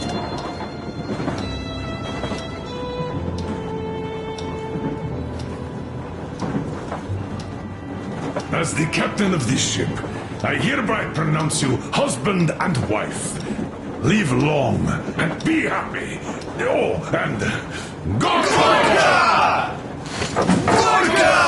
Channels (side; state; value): both; identical; correlation 1.00